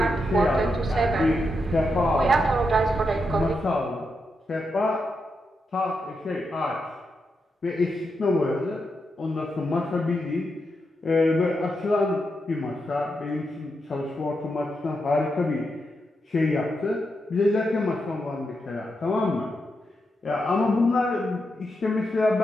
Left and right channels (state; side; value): normal; both; correlation 0.85